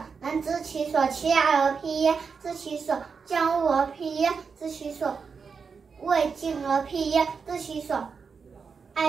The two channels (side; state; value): left; quieter; 5.5 dB